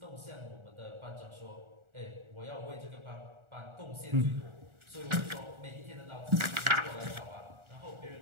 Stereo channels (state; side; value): late; left; 1.4 ms